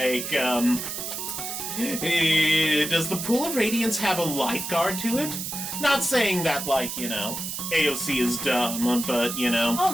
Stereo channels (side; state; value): right; noise; hiss, 5 dB below the sound